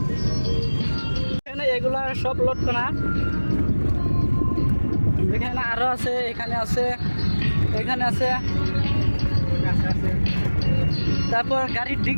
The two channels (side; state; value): both; inverted; correlation -1.00